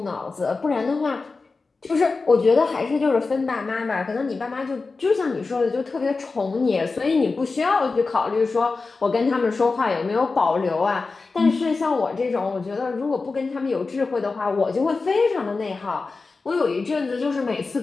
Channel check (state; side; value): quieter; right; 4.0 dB